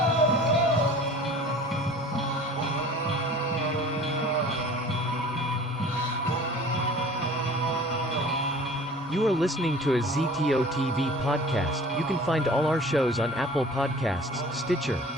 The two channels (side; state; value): both; normal; correlation 0.45